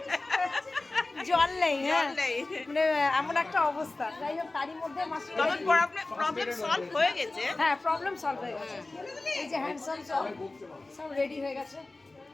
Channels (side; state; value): right; quieter; 3.1 dB